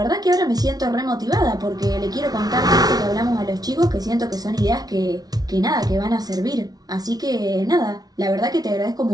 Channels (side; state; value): left; late; 0.19 ms